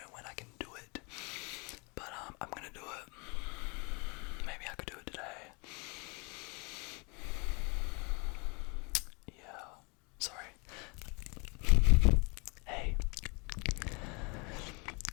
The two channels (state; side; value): quieter; right; 31.0 dB